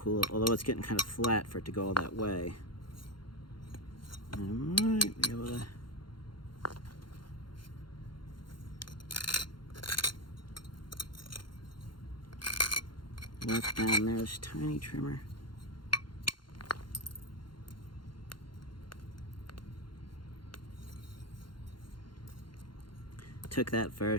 although it's getting kind of flat for it to go all that way. I might be able to. Left down there's tiny trimmer. Took that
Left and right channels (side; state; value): right; late; 0.72 ms